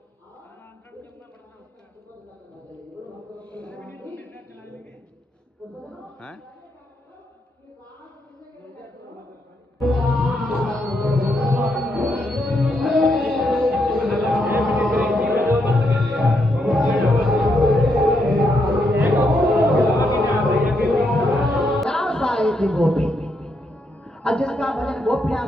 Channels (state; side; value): normal; both; correlation 0.79